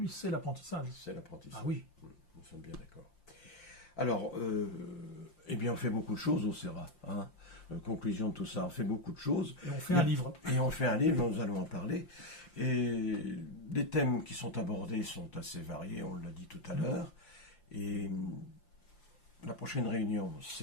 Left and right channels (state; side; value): late; right; 5.7 ms